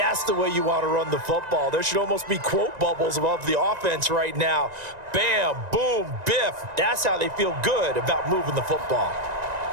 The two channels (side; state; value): left; late; 1.9 ms